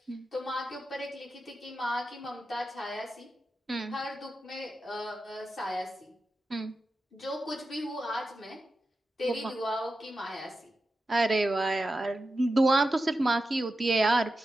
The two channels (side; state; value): both; normal; correlation 0.91